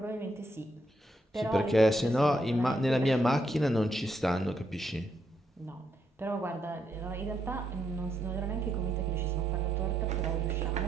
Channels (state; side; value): normal; both; correlation 0.78